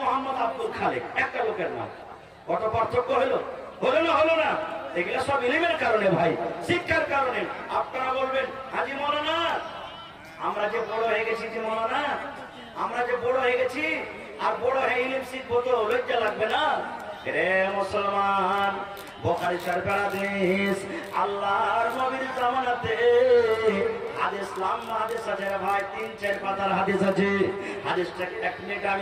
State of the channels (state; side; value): identical; both; correlation 1.00